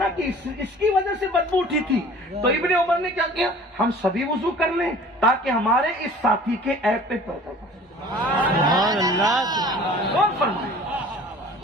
کہ اس کی وجہ سے بدبو اٹھی تھی. تو ابن عمر نے کیا کیا، ہم سبھی وضو کر لیں تاکہ ہمارے اس ساتھی کے عیب پہ پردہ پڑے. کون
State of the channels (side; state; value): both; normal; correlation 0.46